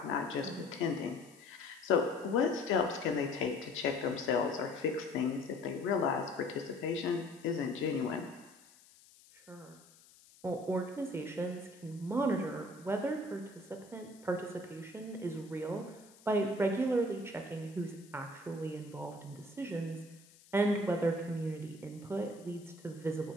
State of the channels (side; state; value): left; noise; hiss, 25 dB below the sound